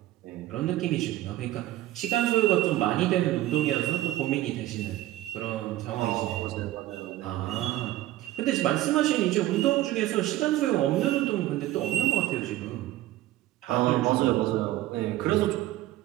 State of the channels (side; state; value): left; quieter; 15.3 dB